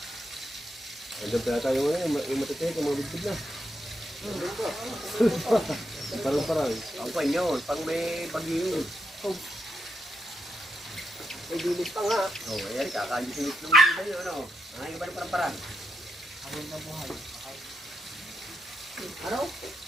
Andun pala tayo ngayon, yung matitihik, yung mga bigtid na. Parang. Ang pa yun, pag may bagyo yun. May dilis pa nga. Oh, ayan, kakagising ng tayo, ano? Ang iba ng parang-parang. Ano?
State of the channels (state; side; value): normal; both; correlation 0.83